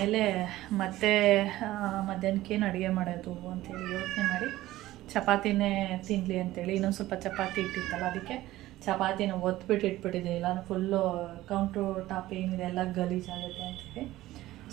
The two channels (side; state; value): left; quieter; 16.1 dB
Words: ಮತ್ತೆ ಮಧ್ಯಾಹ್ನಕ್ಕೇನು ಅಡುಗೆ ಮಾಡೋದು ಅಂತೇಳಿ ಯೋಚನೆ ಮಾಡಿ ಚಪಾತಿನೇ ತಿನ್ನಲಿ ಅಂತೇಳಿ ಇನ್ನೊಂದು ಸ್ವಲ್ಪ ಚಪಾತಿ ಇಟ್ಟಿತ್ತಲ್ಲ, ಅದಕ್ಕೆ ಚಪಾತಿನ ಒತ್ಬಿಟ್ಟು ಇಟ್ಬಿಟ್ಟಿದೆ. ಇಲ್ಲ ಫುಲ್ಲು ಕೌಂಟ್ರು ಟಾಪ್ ಏನಿದೆ ಎಲ್ಲ ಗಲೀಜಾಗುತ್ತೆ ಅಂತೇಳಿ